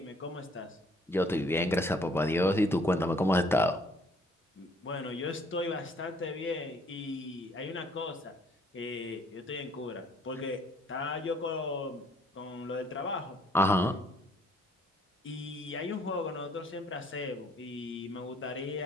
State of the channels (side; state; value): both; normal; correlation 0.62